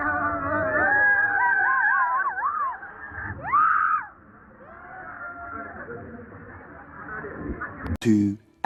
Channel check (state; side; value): identical; both; correlation 1.00